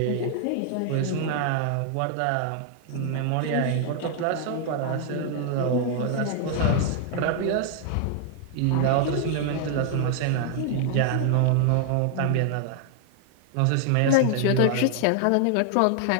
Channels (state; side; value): different; both; correlation 0.00